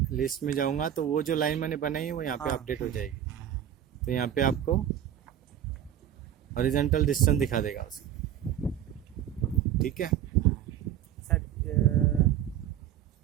लिस्ट में जाऊंगा तो वो जो लाइन मैंने बनाई है वो यहाँ पे हाँ। अपडेट हो जाएगी। तो यहाँ पे आपको हॉरिजॉन्टल डिस्टेंस दिखा देगा उसको, ठीक है। सर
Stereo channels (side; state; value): left; quieter; 10.6 dB